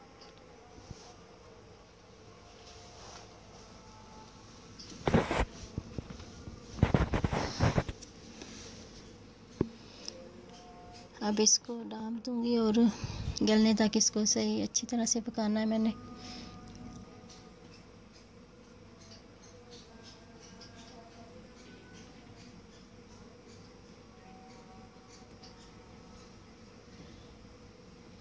अब इसको डाल दूँगी और गलने तक इसको सही अच्छी तरह से पकाना है मैंने।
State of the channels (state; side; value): identical; both; correlation 1.00